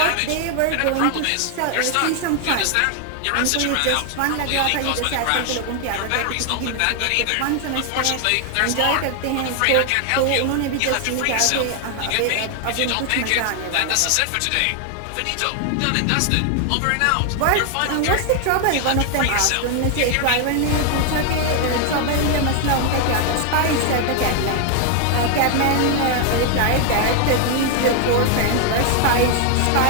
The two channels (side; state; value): both; different; correlation 0.00